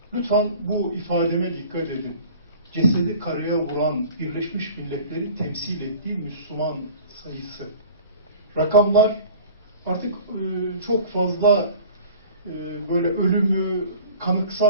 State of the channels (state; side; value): inverted; both; correlation -0.44